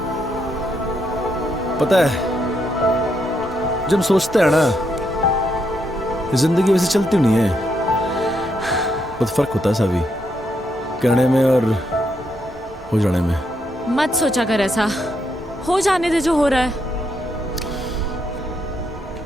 पता है जब सोचते हैं ना जिंदगी वैसे चलती नहीं है, बहुत फर्क होता है सावी, कहने में और हो जाने में। मत सोचा कर ऐसा, हो जाने दे जो हो रहा है।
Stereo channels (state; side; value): normal; both; correlation 0.78